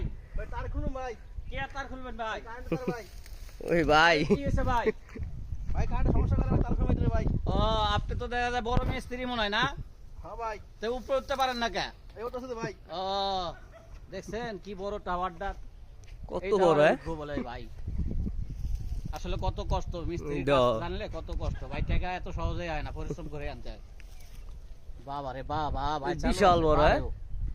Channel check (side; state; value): both; identical; correlation 1.00